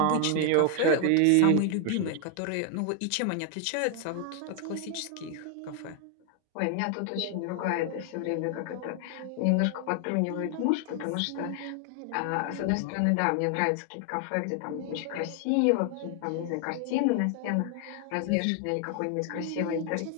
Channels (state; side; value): different; both; correlation 0.00